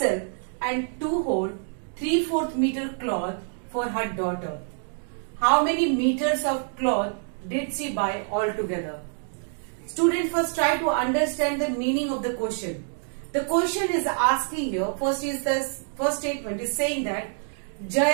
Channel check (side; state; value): left; silent; 61 dB below the other